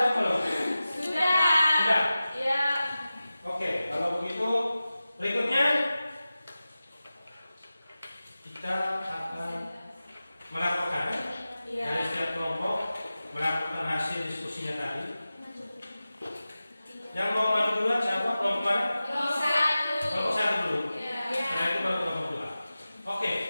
belum? Sudah. Sudah? Ya. Oke, kalau begitu berikutnya kita akan melaporkan dari setiap kelompok melakukan hasil diskusinya tadi. Yang mau maju duluan siapa? Kelompok mana? Kelompok 1. Kelompok 1 dulu. Ya. Setelah itu baru kelompok 2. Oke,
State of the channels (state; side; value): inverted; both; correlation -0.95